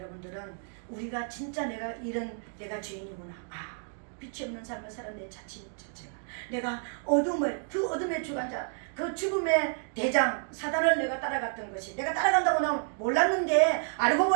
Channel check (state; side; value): silent; left; 58 dB below the other